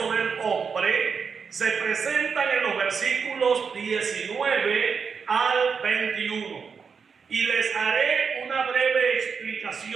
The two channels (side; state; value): left; quieter; 5.9 dB